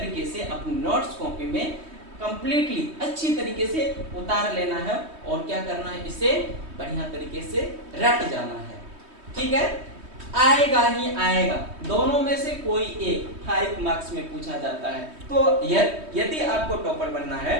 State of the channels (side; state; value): left; late; 3.2 ms